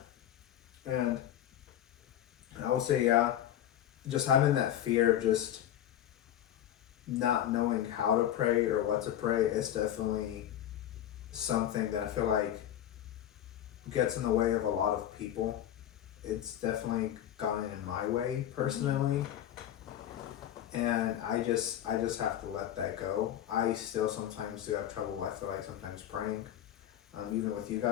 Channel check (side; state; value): right; quieter; 11.4 dB